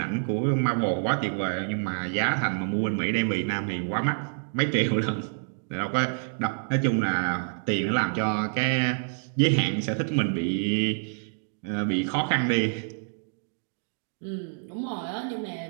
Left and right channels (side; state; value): left; silent; digital silence